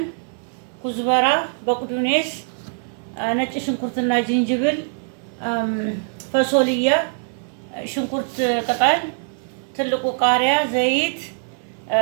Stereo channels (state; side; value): silent; left; digital silence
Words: ኩዝበራ፣ በቅዱኔስ፣ ነጭ ሽንኩርትና ዝንጅብል፣ ፈሶልያ፣ ሽንኩርት ቅጠል፣ ትልቁ ቃሪያ፣ ዘይት፣